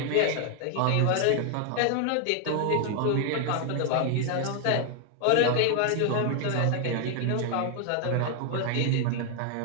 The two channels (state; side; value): different; both; correlation 0.00